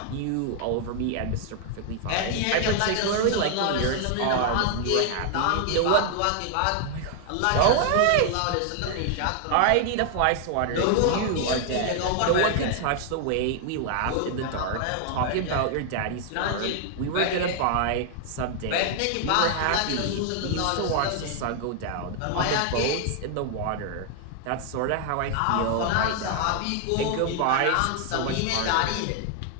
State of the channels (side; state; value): both; different; correlation 0.00